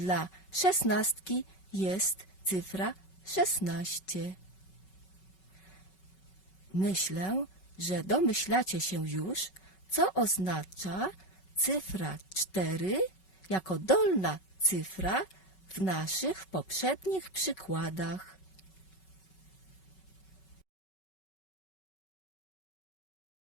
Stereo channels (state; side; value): late; right; 5.3 ms